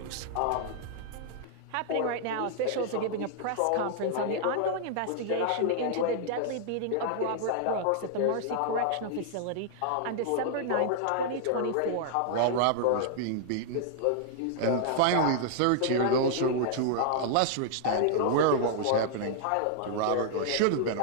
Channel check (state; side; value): different; both; correlation -0.01